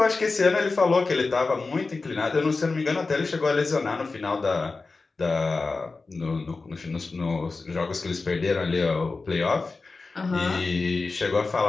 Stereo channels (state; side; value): quieter; right; 3.9 dB